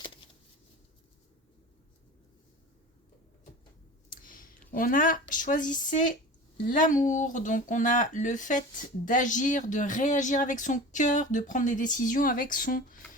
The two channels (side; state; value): both; normal; correlation 0.36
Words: On a choisissé l'amour, donc on a le fait d'agir, de réagir avec son cœur, de prendre des décisions avec son